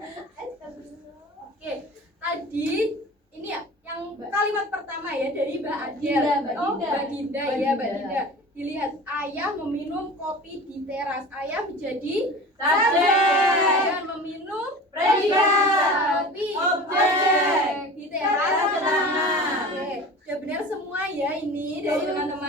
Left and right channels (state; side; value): normal; both; correlation 0.37